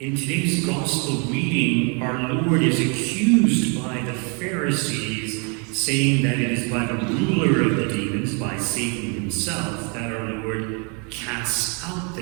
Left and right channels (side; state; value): left; quieter; 35.0 dB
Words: today's gospel reading, our Lord is accused by the Pharisees, saying that it is by the ruler of the demons, by Satan himself, that our Lord casts out